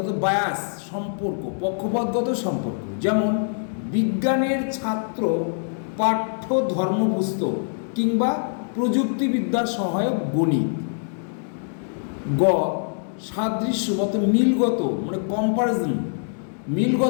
বায়াস সম্পর্ক, পক্ষপাতগত সম্পর্ক, যেমন বিজ্ঞানের ছাত্র পাঠ্য ধর্মপুস্তক কিংবা প্রযুক্তিবিদ্যার সহায়ক গণিত। গ সাদৃশ্যগত মিলগত মানে কম্পারিজন,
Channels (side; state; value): right; silent; digital silence